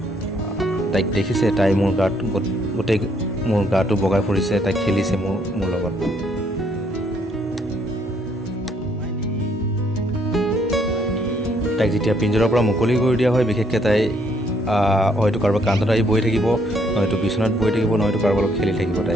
তাইক দেখিছে, তাই মোৰ গাত গোটেই মোৰ গাটো বগাই ফুৰিছে, তাই খেলিছে মোৰ লগত। তাইক যেতিয়া পিঞ্জৰাৰ পৰা মুকলি কৰি দিয়া হয়, বিশেষকৈ তাই হয়তো কাৰোবাৰ কান্ধত আহি বহি থাকিব, নহয়তো বিচনাত বহি থাকিব, নহয়তো কাৰোবাৰ লগত খেলি থাকিব।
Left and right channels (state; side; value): normal; both; correlation 0.69